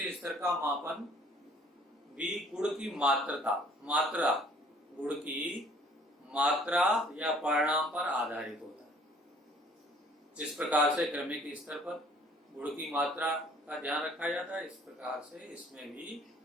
स्तर का मापन भी गुण की मात्रा या परिणाम पर आधारित होता है। जिस प्रकार से क्रमिक स्तर पर गुण की मात्रा का ध्यान रखा जाता है, इस प्रकार से इसमें भी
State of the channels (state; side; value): normal; both; correlation 0.56